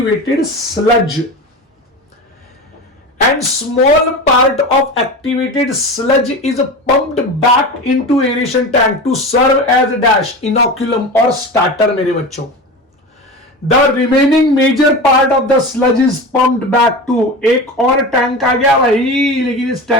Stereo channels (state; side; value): normal; both; correlation 0.28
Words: sludge. And small part of activated sludge is pumped back into aeration tank to serve as a dash, inoculum or starter मेरे बच्चों। The remaining major part of the sludge is pumped back to, एक और tank आ गया भाई, लेकिन इस